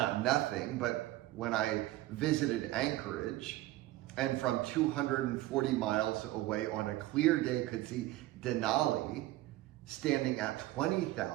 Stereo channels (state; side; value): quieter; left; 16.8 dB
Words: nothing, but when I visited Anchorage and from 240 miles away on a clear day could see Denali standing at